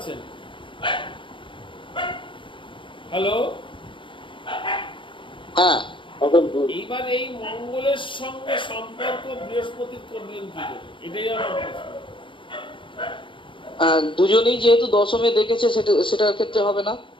হ্যালো, হ্যাঁ, এইবার এই মঙ্গলের সঙ্গে সম্পর্ক বৃহস্পতির করলেন কি করে, এটাই আমার প্রশ্ন। দুজনেই যেহেতু দশমে দেখেছে সেটার ক্ষেত্রে হবে না।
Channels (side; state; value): right; late; 0.24 ms